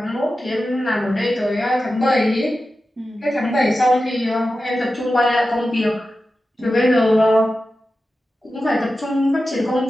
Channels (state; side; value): normal; both; correlation 0.93